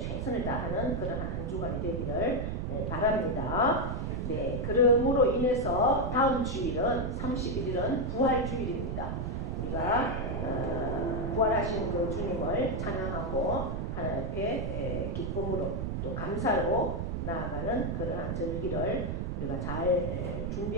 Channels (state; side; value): noise; right; rumble, 2 dB below the sound